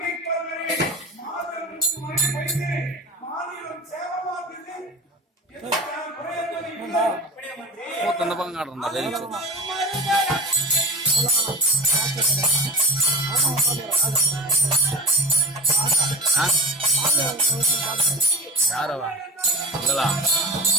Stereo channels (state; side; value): normal; both; correlation 0.32